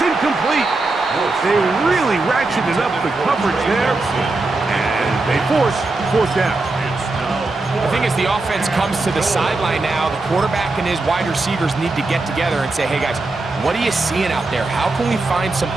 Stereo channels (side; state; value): left; quieter; 3.3 dB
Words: They really ratcheted up the coverage there. And they force down. I think as the offense comes to the sideline now, the quarterback and his wide receivers need to get together and say, hey, guys, what are you seeing out there? How can we find some